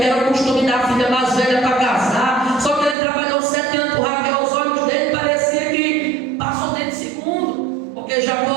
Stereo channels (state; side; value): drops out; left; at 3.0 s